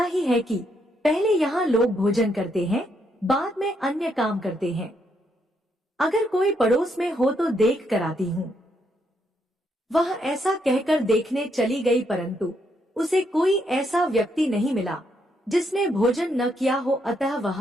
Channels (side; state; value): both; normal; correlation 0.76